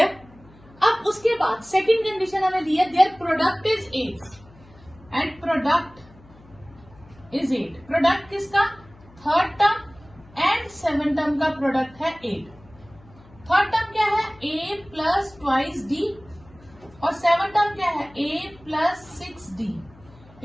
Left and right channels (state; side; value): noise; left; hum, 25 dB below the sound